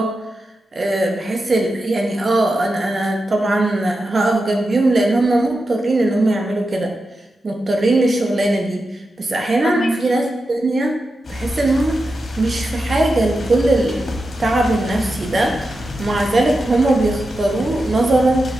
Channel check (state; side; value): normal; both; correlation 0.90